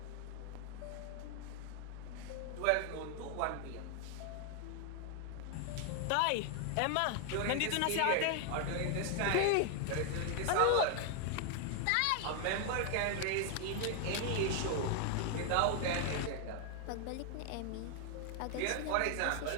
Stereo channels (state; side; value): different; both; correlation 0.00